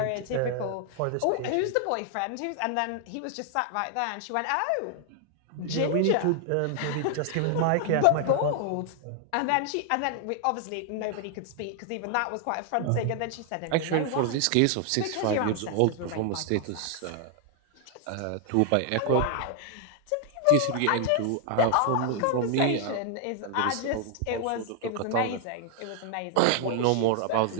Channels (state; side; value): different; both; correlation 0.00